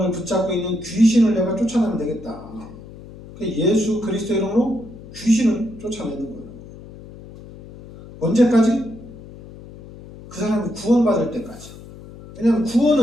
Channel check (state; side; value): noise; left; hum, 17 dB below the sound